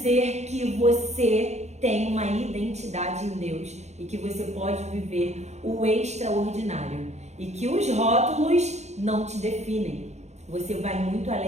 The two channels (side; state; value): left; late; 0.33 ms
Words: que você tem uma identidade em Deus e que você pode viver o extraordinário. E que os rótulos não te definem. Você vai muito